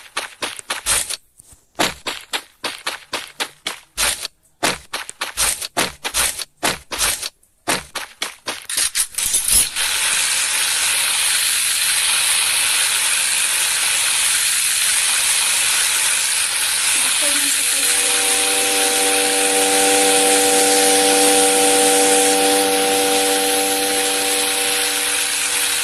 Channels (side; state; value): both; identical; correlation 1.00